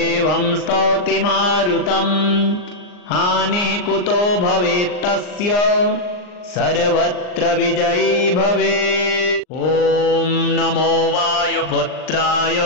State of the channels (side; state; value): right; late; 39 ms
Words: स्तौति मारुतम् हानिः कुतो भवेत्तस्य सर्वत्र विजयी भवेत्। ॐ नमो वायुपुत्राय